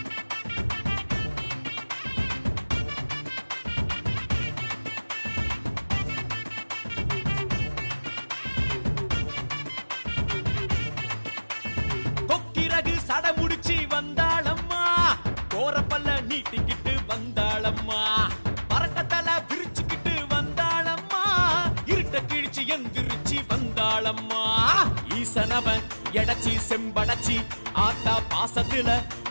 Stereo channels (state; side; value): inverted; both; correlation -1.00